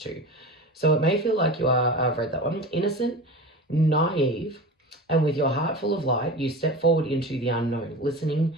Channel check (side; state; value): both; normal; correlation 0.31